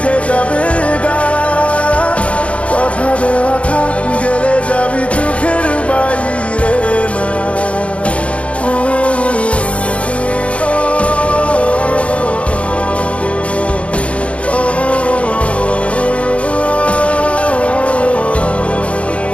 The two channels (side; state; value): right; late; 0.062 ms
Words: যাবে গা। কথা দেওয়া থাক, গেলে যাবি চোখের বাইরে মা।